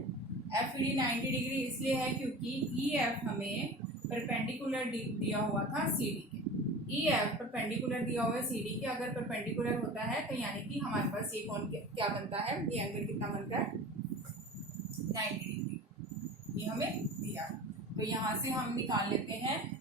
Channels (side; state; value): both; normal; correlation 0.36